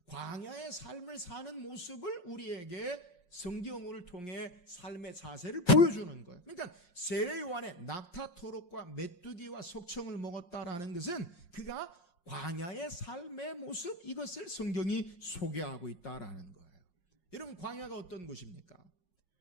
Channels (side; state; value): right; late; 5.6 ms